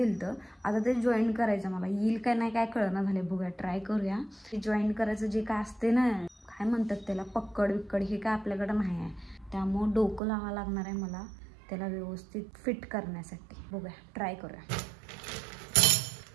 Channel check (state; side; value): drops out; left; at 10.2 s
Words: आता ते जॉईन करायचं, मला येईल काय नाही काय कळना झाले. बघूया, ट्राय करूया. ते जॉईन करायचं जे काय असते ना, काय म्हणतात त्याला, पक्कड विक्कड, हे काय आपल्याकडे नाही आहे. त्यामुळं डोकं लावावं लागणार आहे मला त्याला व्यवस्थित फिट करण्यासाठी. बघूया, ट्राय करूया.